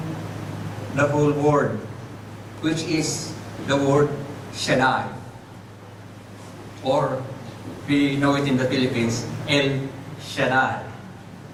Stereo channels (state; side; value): identical; both; correlation 1.00